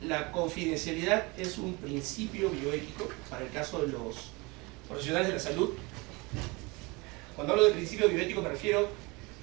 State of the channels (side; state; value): left; quieter; 26.0 dB